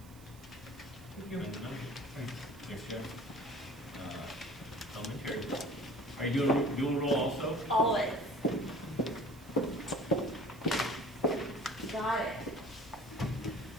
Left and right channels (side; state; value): right; noise; hiss, 24 dB below the sound